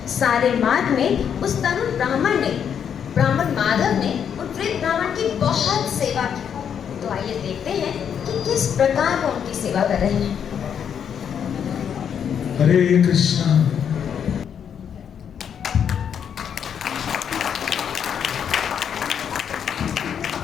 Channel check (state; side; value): quieter; right; 8.1 dB